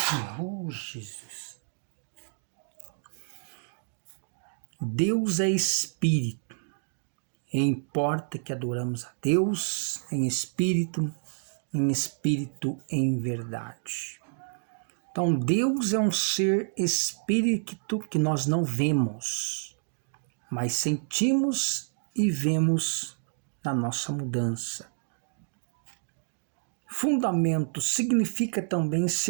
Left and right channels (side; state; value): left; silent; digital silence